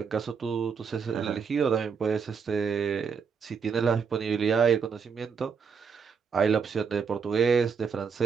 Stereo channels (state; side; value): quieter; left; 6.1 dB